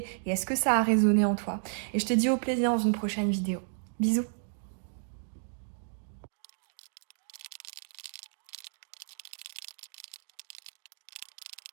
et est-ce que ça a résonné en toi. Et je te dis au plaisir dans une prochaine vidéo. Bisous.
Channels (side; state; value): left; silent; digital silence